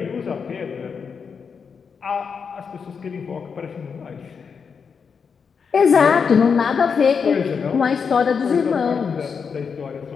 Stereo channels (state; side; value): quieter; right; 6.0 dB